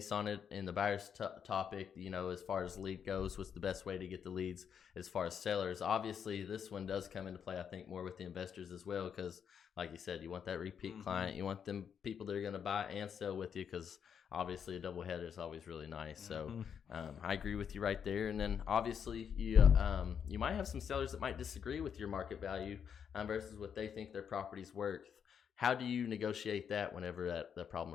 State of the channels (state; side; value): quieter; right; 7.7 dB